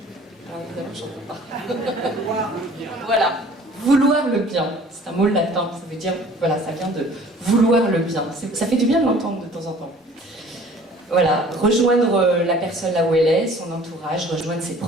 Ah, évidemment, j'en peux pas. Voilà, vouloir le bien, c'est un mot latin, ça veut dire, voilà, ça vient de vouloir le bien. Ça fait du bien de l'entendre de temps en temps. Voilà, rejoindre la personne là où elle est, son entourage, rejoindre ses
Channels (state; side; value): normal; both; correlation 0.51